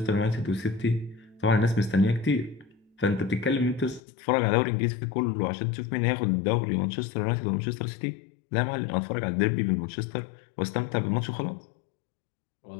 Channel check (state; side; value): drops out; right; at 4.0 s